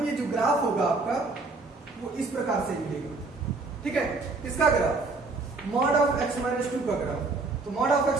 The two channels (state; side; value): quieter; left; 3.6 dB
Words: ये जो ग्राफ होगा आपका वो इस प्रकार से मिलेगा, ठीक है। इसका ग्राफ मॉड ऑफ x-2 का ग्राफ, तो मॉड ऑफ